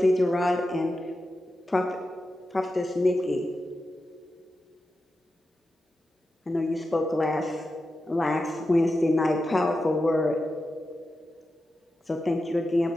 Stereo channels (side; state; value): both; normal; correlation 0.91